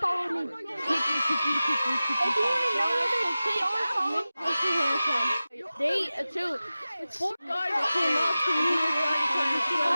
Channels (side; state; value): both; inverted; correlation -0.96